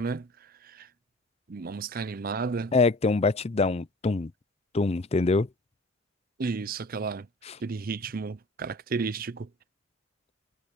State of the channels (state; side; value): normal; both; correlation 0.44